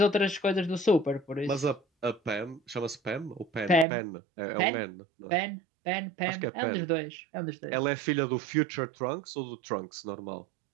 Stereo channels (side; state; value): left; drops out; at 3.9 s